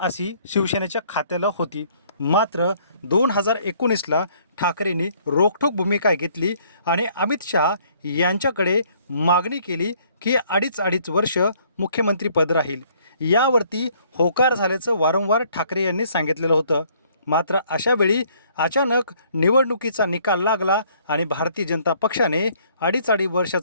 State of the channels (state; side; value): inverted; both; correlation -0.62